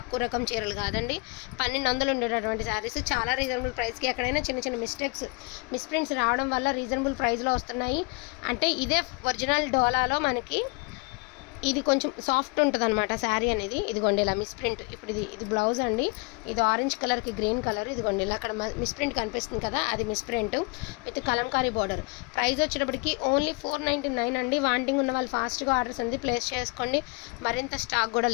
రకం చీరలు కాదండి, 1200 ఉండేటటువంటి శారీస్ చాలా రీజనబుల్ ప్రైస్కి. ఎక్కడైనా చిన్న చిన్న మిస్ప్రింట్స్ రావడం వల్ల రీజనబుల్ ప్రైస్లో వస్తున్నాయి. అంటే ఇదే ఒరిజినల్ డోలాలో మనకి ఇది కొంచెం సాఫ్ట్ ఉంటుంది అనమాట శారీ అనేది. ఇదిగోండి ఇలా మిస్ప్రింట్. ఇప్పుడు ఇది బ్లౌజ్ అండి. ఇది ఆరెంజ్ కలర్కి గ్రీన్ కలర్. ఇదిగోండి ఇలా అక్కడ మిస్ప్రింట్ కనిపిస్తుంది కదా, అది misprint with Kalamkari border. Price వచ్చేటప్పటికి ఓన్లీ 499 అండి. వాంటింగ్ ఉన్న వాళ్ళు ఫాస్ట్గా ఆర్డర్స్ అనేది ప్లేస్ చేసుకోండి, మరింత స్టాక్ కూడా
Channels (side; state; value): right; quieter; 29.5 dB